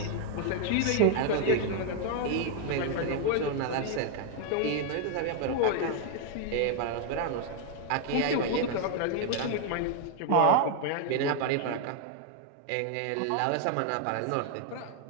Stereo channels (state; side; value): different; both; correlation 0.00